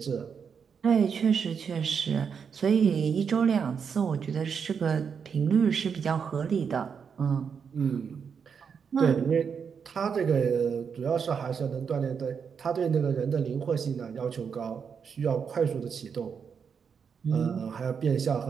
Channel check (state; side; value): quieter; left; 6.6 dB